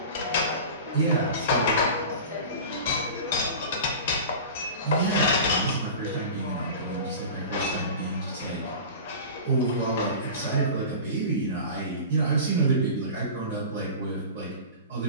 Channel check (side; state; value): both; inverted; correlation -0.34